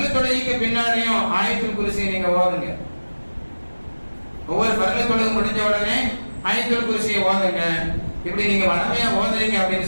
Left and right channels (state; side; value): inverted; both; correlation -1.00